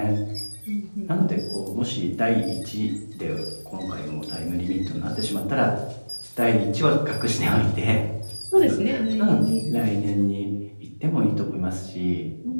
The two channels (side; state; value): both; inverted; correlation -1.00